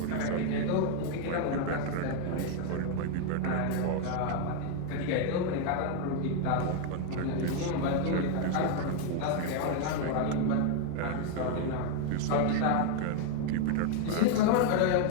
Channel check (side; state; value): both; different; correlation 0.00